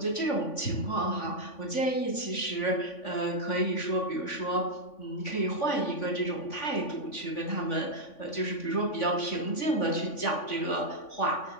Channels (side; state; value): right; late; 3.5 ms